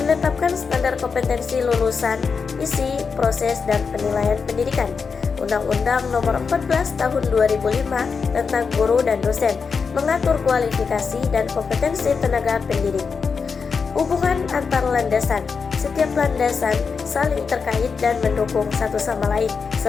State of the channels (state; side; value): quieter; right; 5.4 dB